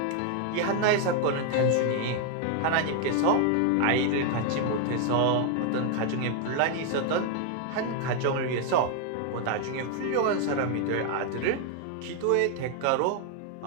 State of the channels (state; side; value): different; both; correlation 0.00